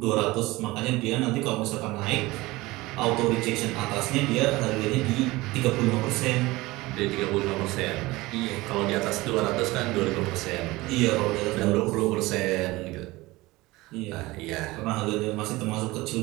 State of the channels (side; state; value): left; quieter; 20.5 dB